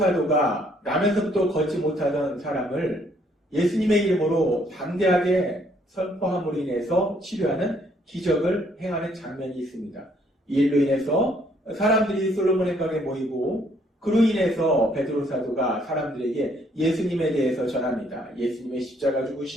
나면서부터 걷지 못하던 사람을 예수님의 이름으로 담대하게 선포함으로 인해서 치료하는 기적을 행하는 장면이 있습니다. 이 일로 인해서 사람들이 솔로몬의 벽에 모이고 그로 인해서 베드로 사도가 사람들에게 예수님에 대해서 전합니다. 예수님의 십자가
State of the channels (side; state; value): both; normal; correlation 0.66